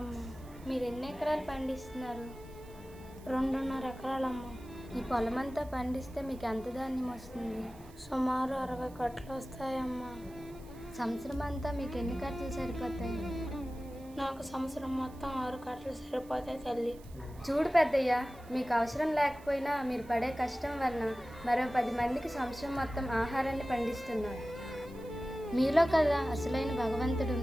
మీరు ఎన్ని ఎకరాలు పండిస్తున్నారు? 2.5 ఎకరాలమ్మా. ఈ పొలమంతా పండిస్తే మీకు ఎంత ధాన్యం వస్తుంది? సుమారు 60 కట్టలు వస్తాయమ్మా. సంవత్సరం అంతా మీకు ఎన్ని కట్టలు సరిపోతాయి? నాకు సంవత్సరం మొత్తం 6 కట్టలు సరిపోతాయి తల్లి. చూడు పెద్దయ్య, మీకు అవసరం లేకపోయినా మీరు పడే కష్టం వలన మరో 10 మందికి సంవత్సరం మొత్తం ఆహారాన్ని పండిస్తున్నారు. మీలో కదా అసలైన భగవంతుడు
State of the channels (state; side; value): noise; right; hiss, 25 dB below the sound